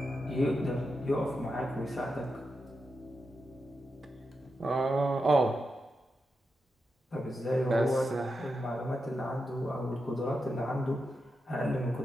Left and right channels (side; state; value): both; normal; correlation 0.87